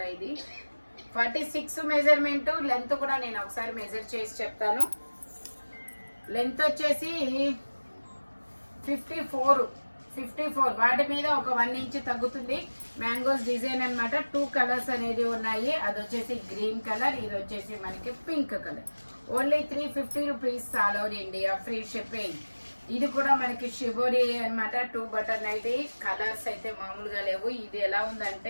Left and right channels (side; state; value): both; inverted; correlation -1.00